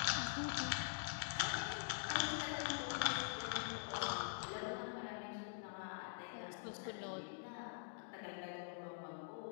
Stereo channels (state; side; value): silent; right; digital silence